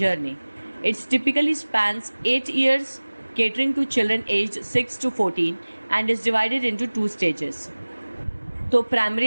It typically spans 8 years, catering to children aged 6 to 14 and is divided into 2 stages. तो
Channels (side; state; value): both; inverted; correlation -1.00